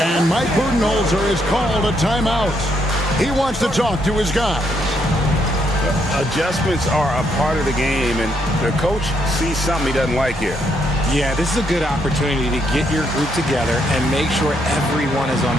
Mike Budenholzer has called a timeout. He wants to talk to his guys. Adjustments are a part of the game, and the coach sees something he doesn't like here. Yeah, this is a good opportunity to get your group together and make sure everyone is on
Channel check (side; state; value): both; normal; correlation 0.75